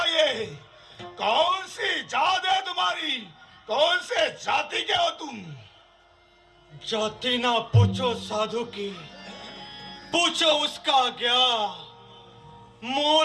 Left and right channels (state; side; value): identical; both; correlation 1.00